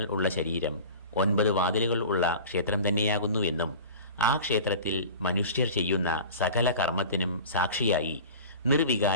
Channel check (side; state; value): both; inverted; correlation -0.38